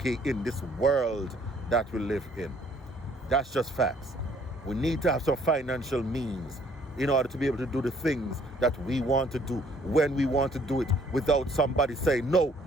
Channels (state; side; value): normal; both; correlation 0.61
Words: in this world that we live in. That's just facts. We need to have some financial means in order to be able to do the things that we want to do when we want to do it without somebody saying, no,